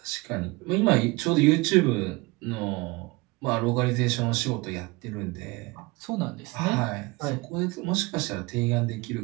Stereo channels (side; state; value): left; quieter; 24.0 dB